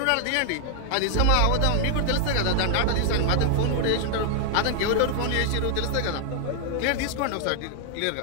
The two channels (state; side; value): different; both; correlation 0.00